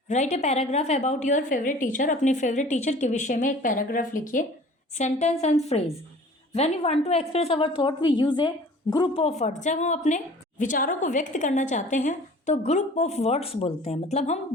Write a paragraph about your favourite teacher. अपने favourite teacher के विषय में एक paragraph लिखिए. Sentence and phrase. When you want to express our thought we use a group of words. जब हम अपने विचारों को व्यक्त करना चाहते हैं तो ग्रुप ऑफ वर्ड्स बोलते हैं. मतलब हम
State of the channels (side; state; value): both; normal; correlation 0.46